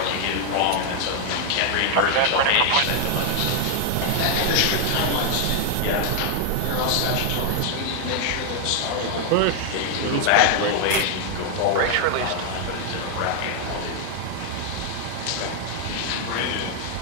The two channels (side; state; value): both; different; correlation 0.00